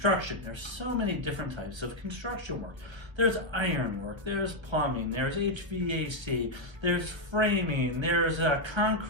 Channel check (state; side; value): late; left; 1.2 ms